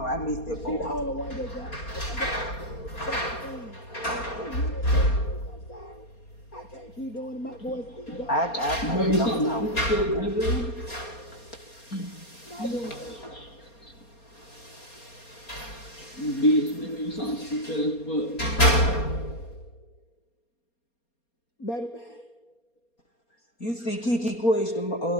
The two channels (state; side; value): late; right; 4.3 ms